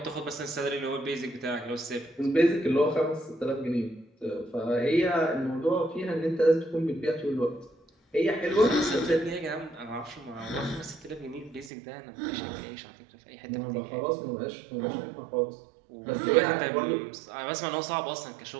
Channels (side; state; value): left; drops out; at 11.7 s